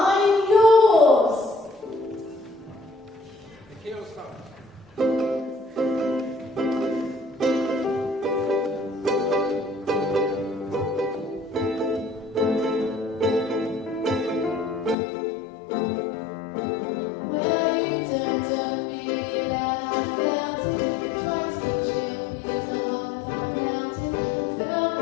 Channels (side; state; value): right; drops out; at 15.0 s